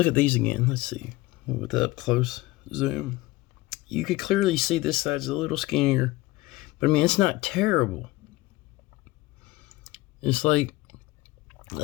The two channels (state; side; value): quieter; right; 19.2 dB